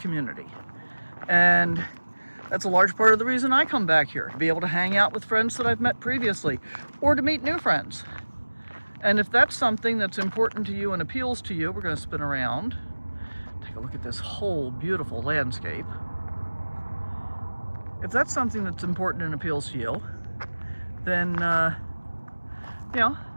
And that's a large part of the reason I come back here, to be able to hang out with friends that I've met previously, or to meet new friends. And if that's something that's important to you and appeals to you, we're going to spin around, take a look at this whole beautiful landscape. If that's something that's important and appeals to you, then, you know,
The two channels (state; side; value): inverted; both; correlation -1.00